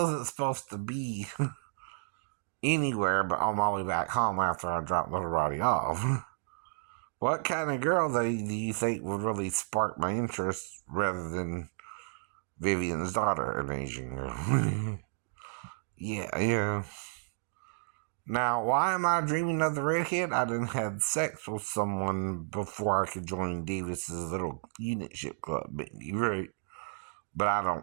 supposed to be anywhere but on my way back home after I dropped little Roddy off. What kind of girl do you think would really spark my interest rather than Vivian's daughter, an Asian girl? Yeah, yeah. Now, why am I dreaming of the redhead? I done had sex with someone before I could join Davis's little unit ship club, baby, right? But I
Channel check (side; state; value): left; silent; digital silence